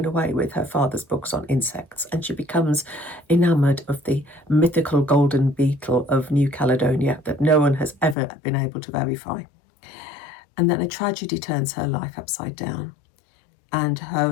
away with her father's books on insects, and she becomes enamoured of the mythical golden beetle of New Caledonia that no one has ever been able to verify. And then a tragedy turns her life upside down, and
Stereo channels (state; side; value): drops out; right; at 8.2 s